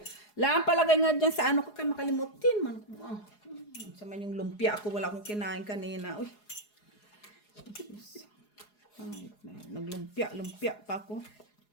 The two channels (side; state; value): right; late; 4.8 ms